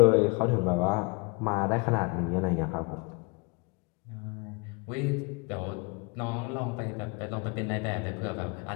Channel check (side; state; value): right; quieter; 30.3 dB